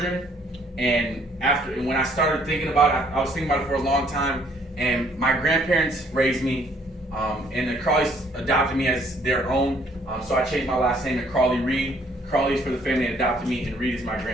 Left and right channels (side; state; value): both; normal; correlation 0.63